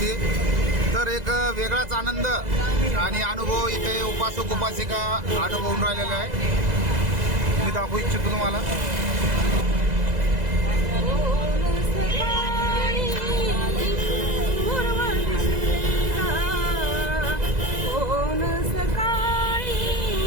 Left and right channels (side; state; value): left; late; 2.0 ms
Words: तर एक वेगळाच आनंद आणि अनुभव इथे उपासक उपासिका अनुभवून राहिलेला आहे. मी दाखवू इच्छितो तुम्हाला.